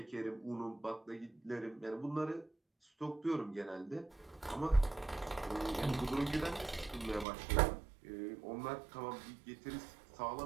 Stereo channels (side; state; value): left; drops out; at 7.2 s